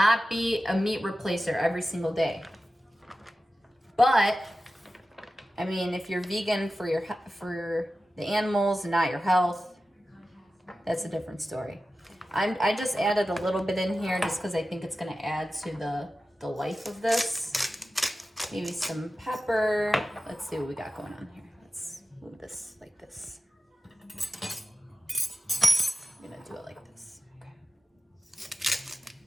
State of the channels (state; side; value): normal; both; correlation 0.94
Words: be a meat replacer every single day. But, I mean, if you're vegan for the animals and not your health, that's a different story. I just added a little bit in here just because I think it's gonna add to the life of this. Maybe some pepper. Let's see what we got going on here. Let's move this like this. I'm gonna do it like this. Okay.